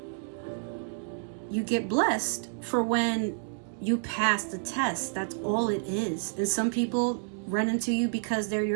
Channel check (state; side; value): silent; left; digital silence